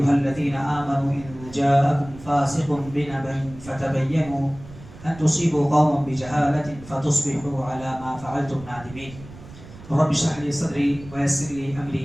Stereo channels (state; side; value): noise; right; rumble, 18 dB below the sound